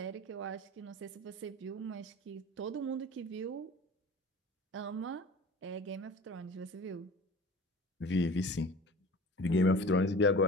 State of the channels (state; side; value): normal; both; correlation 0.39